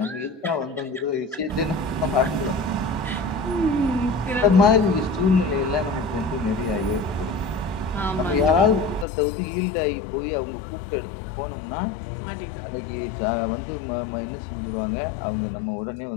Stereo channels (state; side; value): drops out; right; at 9.1 s